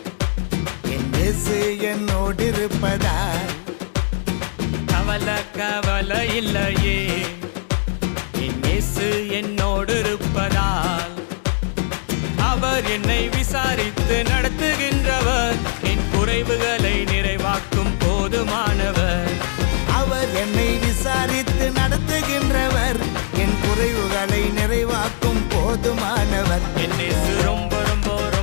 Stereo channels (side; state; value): right; silent; digital silence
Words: என் இயேசு என்னோடு இருப்பதால். கவலை கவலை இல்லையே, என் இயேசு என்னோடு இருப்பதால். அவர் என்னை விசாரித்து நடத்துகின்றவர், என் குறைவுகளை நிறைவாக்கும் போதுமானவர். அவர் என்னை விசாரித்து நடத்துகின்றவர், என் குறைவுகளை நிறைவாக்கும் போதுமானவர். என் இயேசு ரொம்ப ரொம்ப